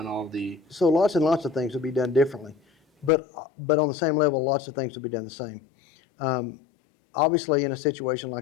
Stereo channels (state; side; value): drops out; right; at 3.1 s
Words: all the So lots and lots of things will be done differently, but on the same level, lots of things will be done the same. Obviously, in a situation